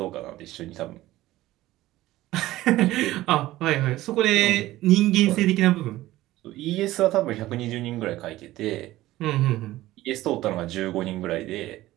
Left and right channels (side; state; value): left; quieter; 16.3 dB